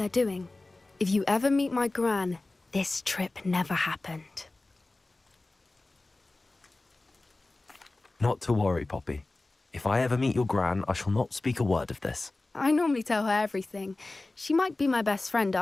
doing. If you ever meet my gran, this trip never happened. Not to worry, Poppy. If I ever meet your gran, I shall not speak a word of this. I normally tell her everything. She might be my best friend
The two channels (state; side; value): quieter; right; 3.1 dB